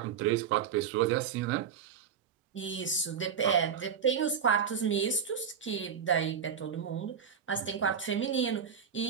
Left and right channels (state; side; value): quieter; left; 7.3 dB